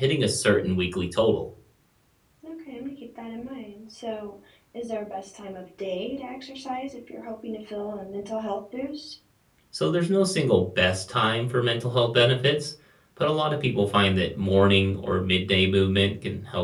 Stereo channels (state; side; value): identical; both; correlation 1.00